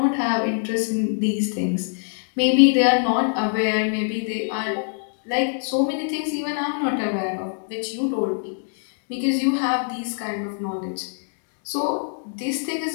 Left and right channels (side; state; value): right; silent; 63 dB below the other